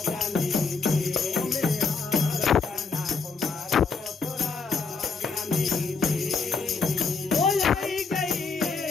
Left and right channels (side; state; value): right; quieter; 4.6 dB